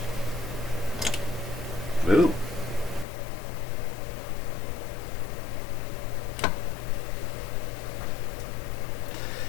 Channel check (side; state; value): right; drops out; at 3.1 s